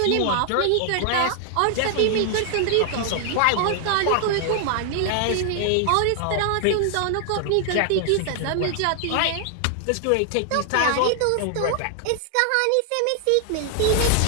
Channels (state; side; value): different; both; correlation 0.00